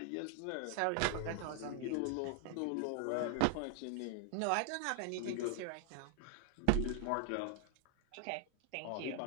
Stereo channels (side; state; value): both; different; correlation 0.00